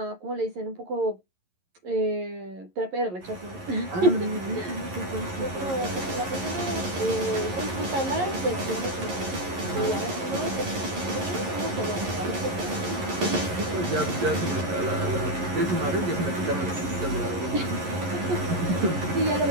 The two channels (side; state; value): left; late; 11 ms